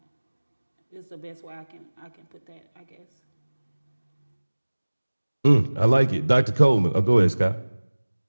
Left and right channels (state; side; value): inverted; both; correlation -1.00